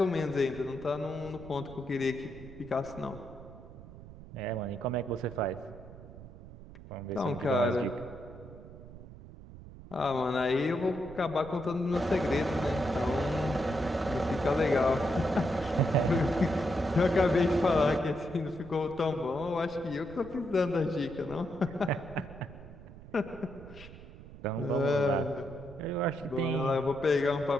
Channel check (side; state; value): right; noise; rumble, 16 dB below the sound